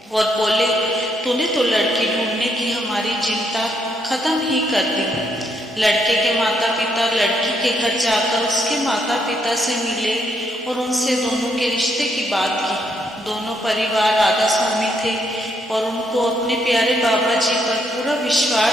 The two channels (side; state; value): both; normal; correlation 0.74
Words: और बोले, तूने तो लड़की ढूंढने की हमारी चिंता खत्म ही कर दी। लड़के के माता पिता लड़की के घर जाकर उसके माता पिता से मिले और उनसे दोनों के रिश्ते की बात की। दोनों परिवार राधा स्वामी थे और उनको अपने प्यारे बाबा जी पर पूरा